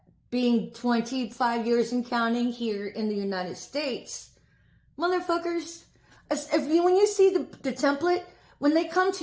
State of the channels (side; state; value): both; identical; correlation 1.00